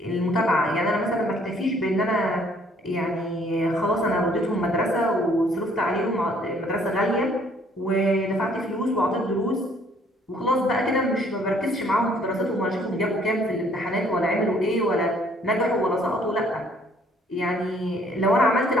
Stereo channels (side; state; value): both; normal; correlation 0.62